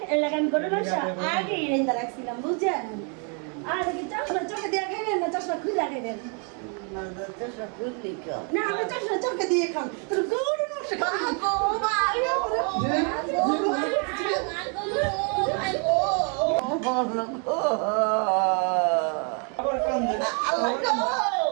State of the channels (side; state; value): left; quieter; 38.2 dB